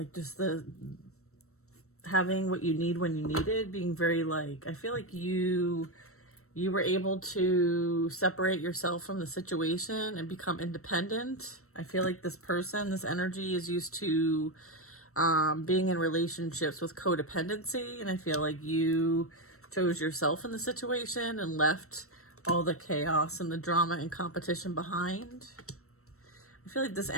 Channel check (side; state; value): right; late; 0.63 ms